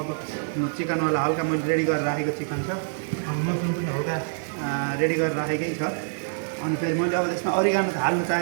चिकनवाला हल्का मैले रेडी गरेर राखेको चिकन छ, अनि मसरुम पनि हल्का रेडी गरेर राखेकै छ। अनि फेरि मैले अब त्यसमा अरिगानो हाल्नु चाहे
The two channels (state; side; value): silent; left; digital silence